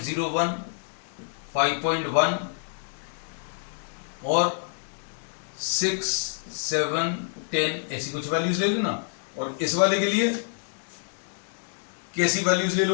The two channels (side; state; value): right; silent; digital silence